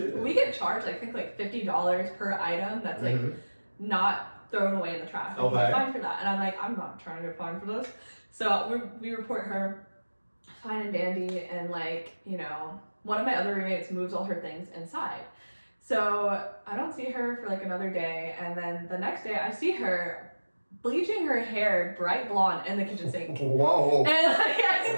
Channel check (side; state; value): both; inverted; correlation -1.00